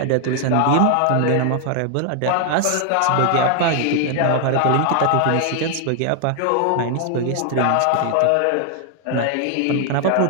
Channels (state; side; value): different; both; correlation 0.00